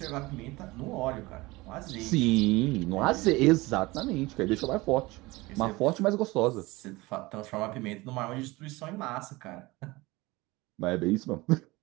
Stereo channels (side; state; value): left; quieter; 21.6 dB